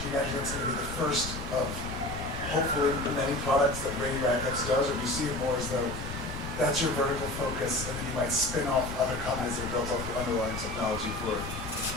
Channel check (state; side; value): noise; left; rumble, 10 dB below the sound